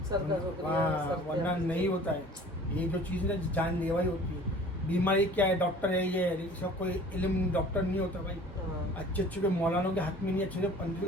वरना नहीं होता है। ये जो चीज़ ना जानलेवा ही होती है। बीमारी क्या है, डॉक्टर है ये, इसका कोई इल्म डॉक्टर नहीं होता भाई। अच्छे अच्छे के मौलानों के हाथ में नहीं, अच्छे पंडित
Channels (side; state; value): both; normal; correlation 0.47